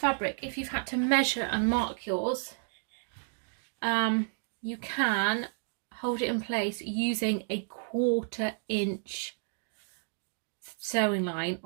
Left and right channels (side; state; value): left; silent; digital silence